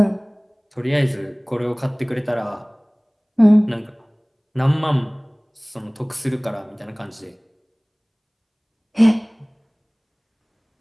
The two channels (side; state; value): both; identical; correlation 1.00